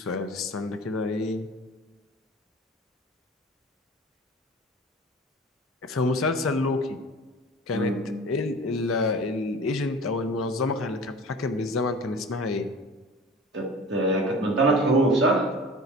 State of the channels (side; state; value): both; normal; correlation 0.40